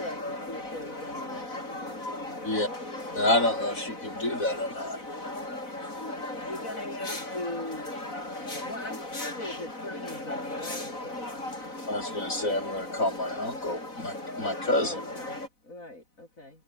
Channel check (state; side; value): late; right; 4.0 ms